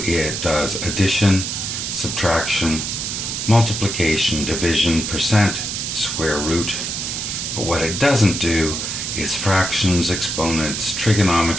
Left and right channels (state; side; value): noise; right; hiss, 3 dB below the sound